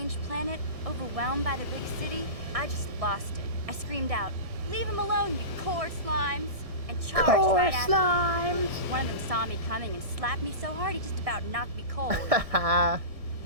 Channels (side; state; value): left; late; 1.6 ms